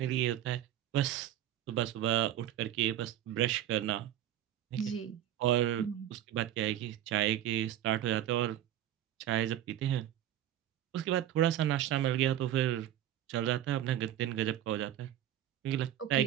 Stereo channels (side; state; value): left; quieter; 11.8 dB